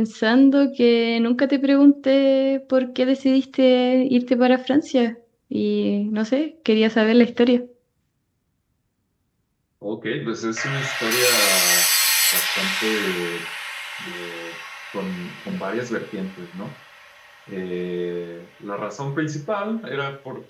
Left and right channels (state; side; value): identical; both; correlation 1.00